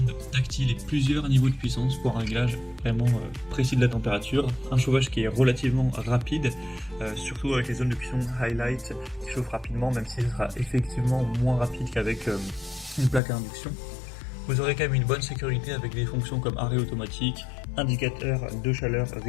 tactiles et plusieurs niveaux de puissance pour un réglage vraiment précis de la température. Un chauffage qui est relativement rapide, surtout avec les zones de cuisson highlight qui chauffent rapidement, même si ce sera effectivement moins rapide qu'avec une plaque à induction. Vous aurez quand même une bonne sécurité avec des fonctions comme arrêt automatique, indicateur de chaleur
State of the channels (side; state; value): right; drops out; at 13.2 s